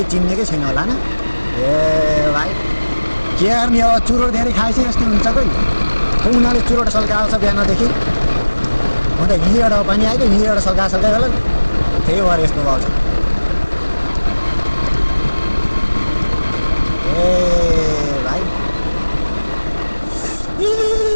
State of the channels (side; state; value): both; inverted; correlation -1.00